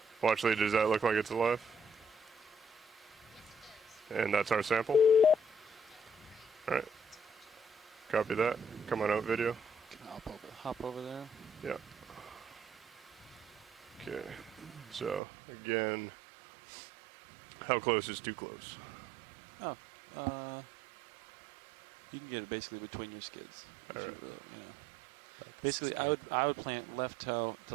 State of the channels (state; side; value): drops out; left; at 15.2 s